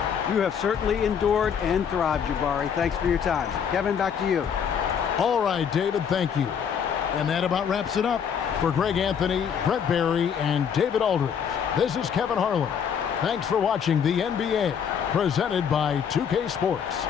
You have certainly endured and thrived, Jabari. Thanks for your time. Kevin, back to you. All right, David, thank you. And that about wraps it up. For Greg Anthony, Brett Barry, and David Aldridge, this is Kevin Harlan. Thanks for watching the NBA, presented by 2K Sports.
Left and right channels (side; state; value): right; quieter; 7.6 dB